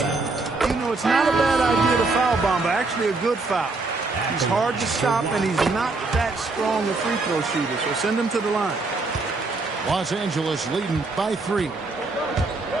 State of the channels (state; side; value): quieter; left; 3.5 dB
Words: You know, it's not a bad idea to foul Bamba. Actually a good foul. He's hard to stop, and he's not that strong a free throw shooter. So send him to the line. Los Angeles leading by 3.